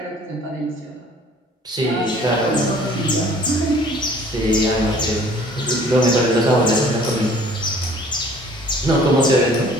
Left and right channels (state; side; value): normal; both; correlation 0.53